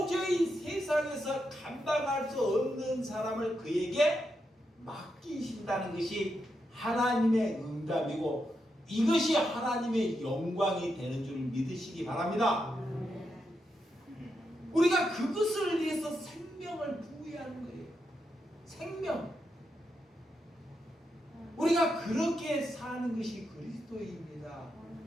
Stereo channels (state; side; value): normal; both; correlation 0.84